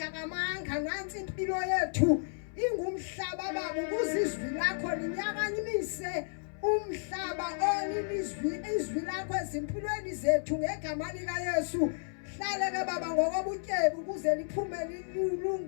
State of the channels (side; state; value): right; silent; 55 dB below the other